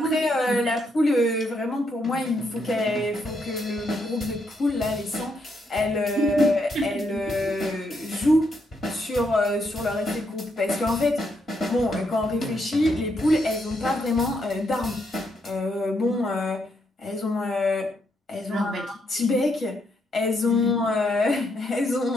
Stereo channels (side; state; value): both; normal; correlation 0.77